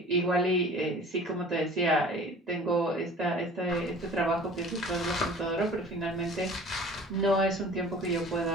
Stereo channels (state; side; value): normal; both; correlation 0.45